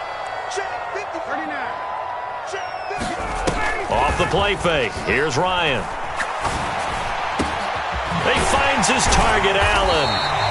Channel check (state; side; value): identical; both; correlation 1.00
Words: Off the play fake. Here's Ryan. He finds his target, Allen.